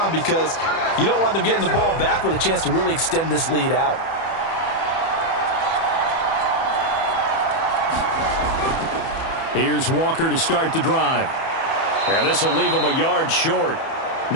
because you don't want them getting the ball back with a chance to really extend this lead out. Here's Walker to start the drive. Yeah, this will leave him a yard short.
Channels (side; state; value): right; late; 31 ms